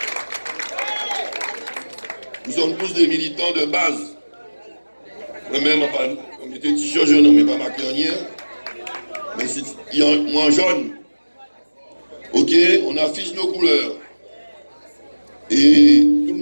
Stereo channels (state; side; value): inverted; both; correlation -1.00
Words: Nous sommes tous des militants de base. Moi-même, on mettait t-shirt jaune, on ne met pas marqué rien. Mais il y a moins jaune. Ok, on affiche nos couleurs. Et tout le